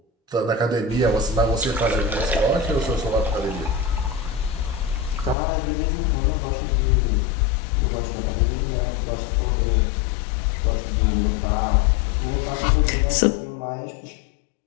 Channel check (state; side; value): drops out; right; at 5.4 s